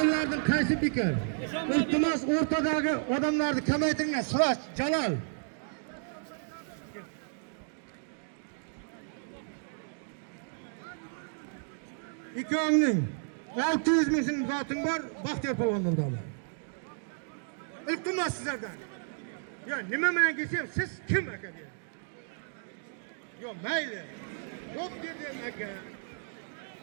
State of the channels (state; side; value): silent; left; digital silence